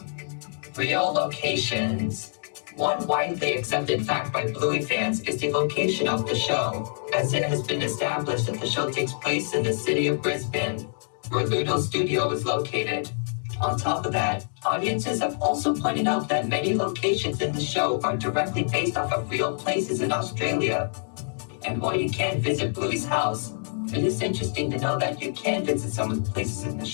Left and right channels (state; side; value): silent; right; digital silence